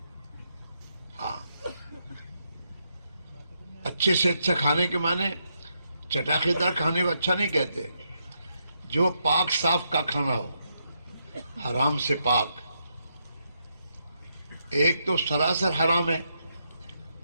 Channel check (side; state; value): both; inverted; correlation -0.80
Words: ہاں، اچھے سے اچھا کھانے کے معنی چٹاخے دار کھانے کو اچھا نہیں کہتے. جو پاک صاف کا کھانا ہو، حرام سے پاک. ایک تو سراسر حرام ہے،